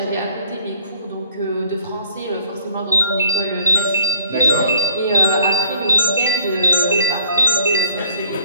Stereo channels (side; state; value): both; inverted; correlation -0.58